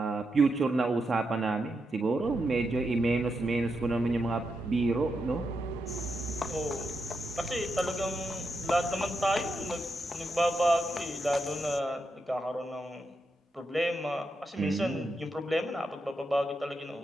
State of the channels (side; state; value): both; normal; correlation 0.84